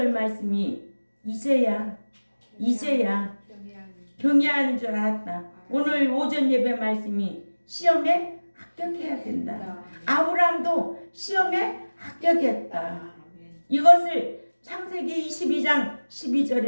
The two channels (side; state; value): both; inverted; correlation -1.00